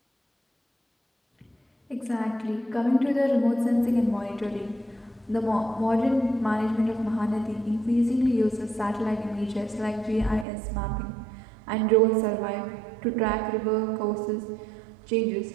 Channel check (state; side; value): drops out; left; at 10.5 s